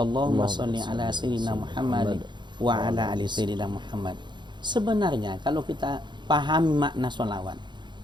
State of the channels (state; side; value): late; left; 0.22 ms